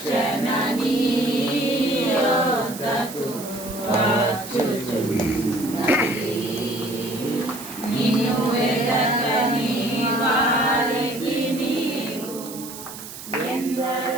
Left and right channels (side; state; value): right; noise; hiss, 12 dB below the sound